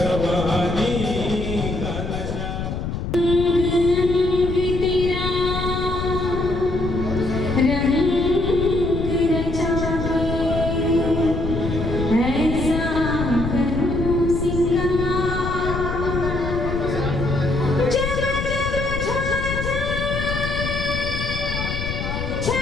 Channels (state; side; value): noise; left; rumble, 4 dB below the sound